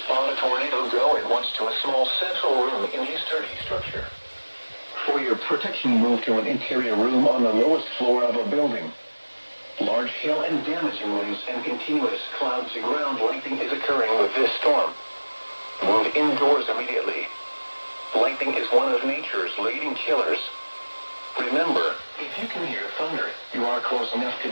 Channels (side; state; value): both; inverted; correlation -1.00